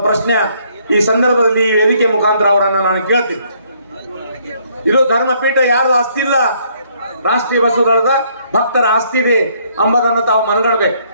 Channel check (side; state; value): both; inverted; correlation -0.67